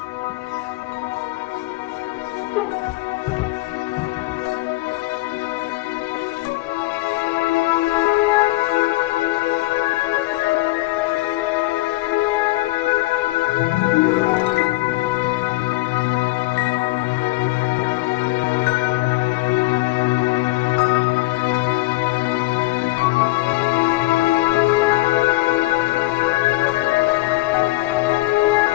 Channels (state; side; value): quieter; right; 20.2 dB